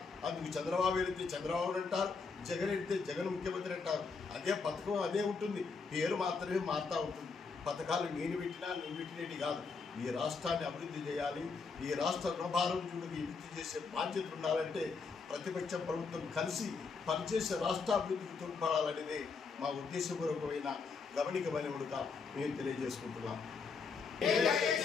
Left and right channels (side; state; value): right; quieter; 4.9 dB